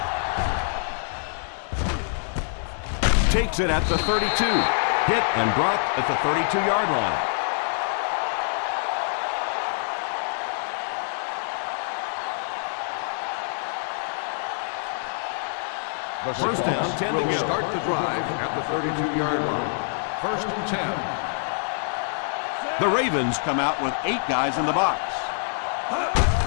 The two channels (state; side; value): silent; right; digital silence